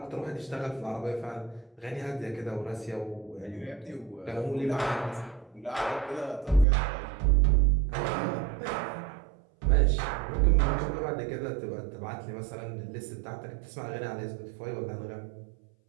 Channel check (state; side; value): drops out; left; at 6.7 s